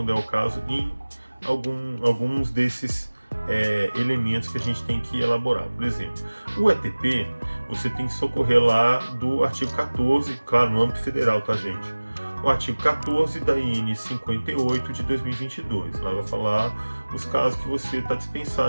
é o caso em alguns desses elementos que a gente tem que elaborar. Por exemplo, o ETP, você tem que socorrer lá do artigo 14, claro, no âmbito federal, tá, gente? o artigo 14 da IN 58 de 2022. Lá vai falar os casos que você está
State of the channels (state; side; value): inverted; both; correlation -1.00